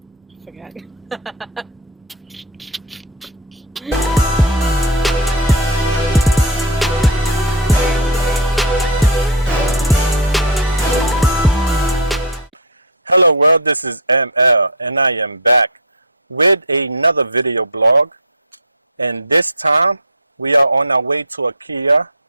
I forgot. Hello world, this is ML and I am back with another video blog, and this time we are on our way to IKEA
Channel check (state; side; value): normal; both; correlation -0.01